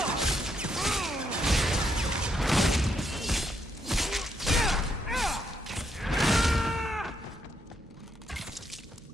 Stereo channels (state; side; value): normal; both; correlation 0.76